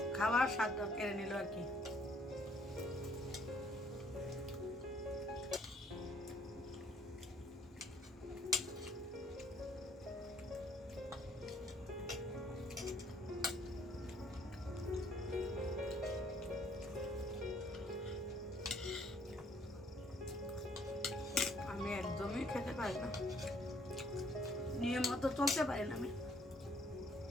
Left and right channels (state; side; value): normal; both; correlation 0.64